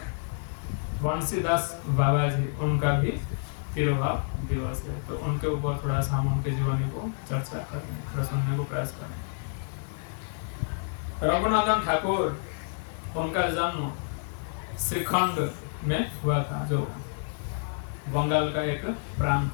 बंसीदास बाबा जी उनका भी तिरुभाव दिवस है। तो उनके ऊपर थोड़ा सा हम उनके जीवनी को चर्चा करें, थोड़ा सुनने को प्रयास करें। रघुनंदन ठाकुर, उनका जन्म श्रीखंड में हुआ था, जो बंगाल का एक प्रांत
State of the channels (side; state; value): right; silent; digital silence